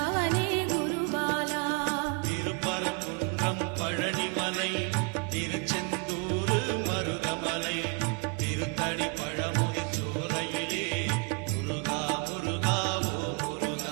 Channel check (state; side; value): quieter; left; 32.0 dB